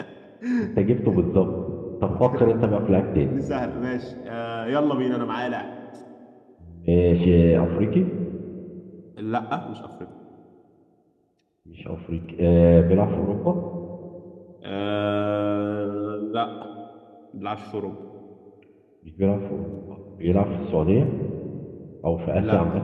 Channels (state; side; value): identical; both; correlation 1.00